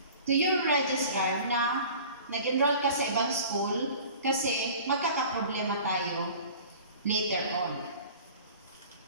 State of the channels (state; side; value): inverted; both; correlation -0.43